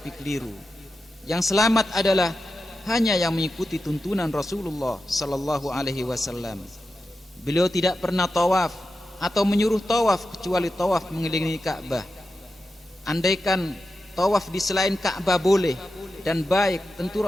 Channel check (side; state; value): both; normal; correlation 0.90